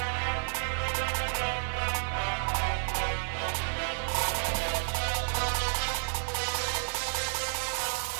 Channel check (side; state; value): left; silent; 57 dB below the other